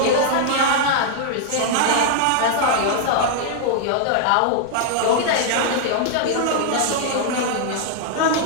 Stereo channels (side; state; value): both; different; correlation -0.01